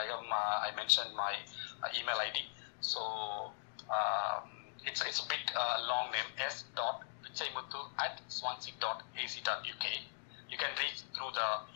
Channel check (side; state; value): right; silent; digital silence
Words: mentioned my email ID. So it's a bit long name, s.pichaimuthu@swansea.ac.uk. You can reach through the